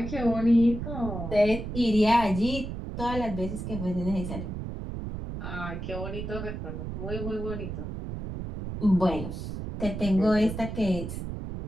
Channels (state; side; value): noise; right; rumble, 6 dB below the sound